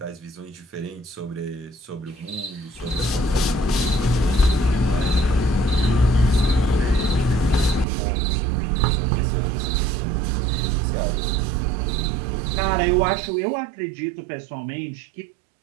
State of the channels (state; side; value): drops out; left; at 7.9 s